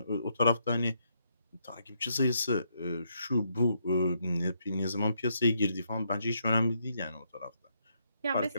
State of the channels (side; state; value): both; inverted; correlation -0.76